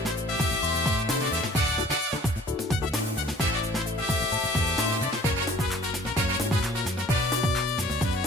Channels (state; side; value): normal; both; correlation 0.52